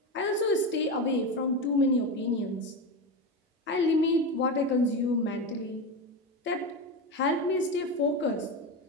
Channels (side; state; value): both; normal; correlation 0.18